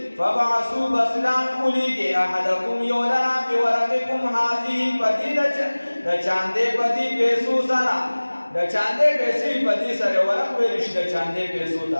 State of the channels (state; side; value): inverted; both; correlation -1.00